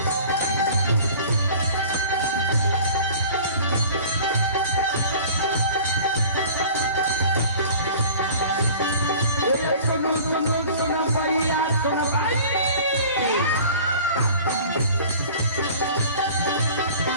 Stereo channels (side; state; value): both; inverted; correlation -0.44